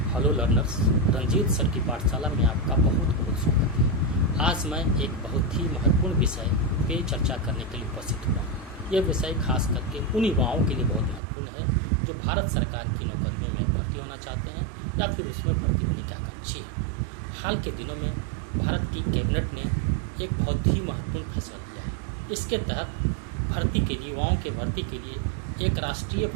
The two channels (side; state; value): left; drops out; at 11.2 s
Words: Hello learners, Ranjit sir की पाठशाला में आपका बहुत बहुत स्वागत है। आज मैं एक बहुत ही महत्वपूर्ण विषय पे चर्चा करने के लिए उपस्थित हुआ। यह विषय खास करके उन युवाओं के लिए बहुत महत्वपूर्ण है जो भारत सरकार की नौकरियों में भर्ती होना चाहते हैं या फिर उसमें भर्ती होने के आकांक्षी हैं। हाल के दिनों में भारत की कैबिनेट ने एक बहुत ही महत्वपूर्ण फैसला लिया है। इसके तहत भर्ती के लिए युवाओं के भर्ती के लिए एक राष्ट्रीय